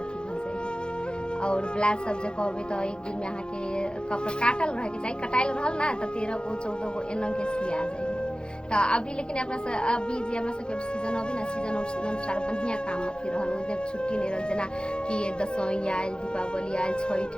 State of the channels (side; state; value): right; late; 0.049 ms